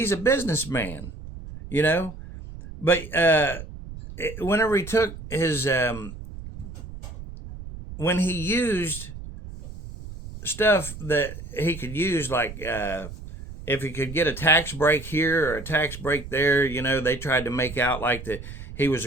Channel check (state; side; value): noise; right; rumble, 12 dB below the sound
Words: a businessman, but whenever he took his when he used stuff that he could use, like if he could get a tax break here or a tax break there, they tried to make out like that he was